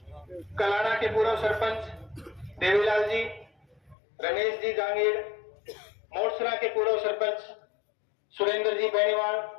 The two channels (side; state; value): right; drops out; at 4.0 s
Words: कलाना के पूर्व सरपंच देवीलाल जी, रमेश जी जांगीर, मोरसरा के पूर्व सरपंच सुरेंद्र जी बेनीवाल,